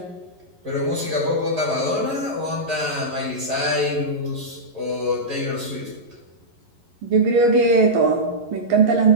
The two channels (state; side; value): late; left; 11 ms